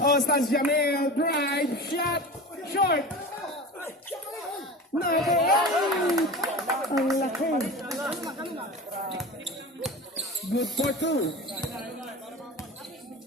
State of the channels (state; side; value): normal; both; correlation 0.32